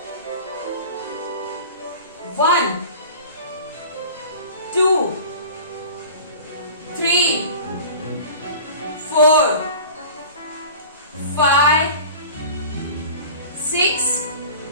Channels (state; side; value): inverted; both; correlation -0.40